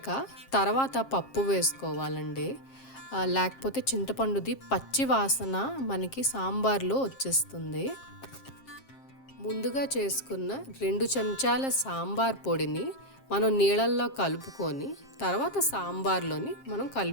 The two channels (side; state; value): right; late; 7.5 ms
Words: తర్వాత పప్పు వేసుకోవాలండి. లేకపోతే చింతపండుది పచ్చి వాసన మనకి సాంబార్లో వచ్చేస్తుంది. ముందుగా చేసుకున్న 2 చెంచాల సాంబార్ పొడిని మనం నీళ్ళల్లో కలుపుకొని తర్వాత సాంబార్లోని మనం